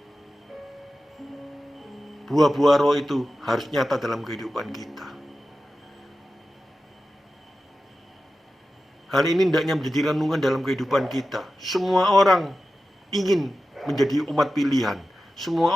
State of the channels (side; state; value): both; normal; correlation 0.93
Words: buah-buah roh itu harus nyata dalam kehidupan kita. Hal ini hendaknya menjadi renungan dalam kehidupan kita. Semua orang ingin menjadi umat pilihan. Semua